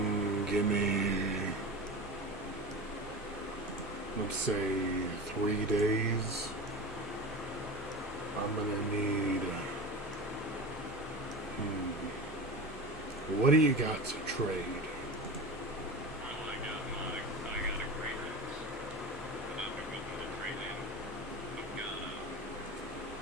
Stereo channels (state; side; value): normal; both; correlation 0.29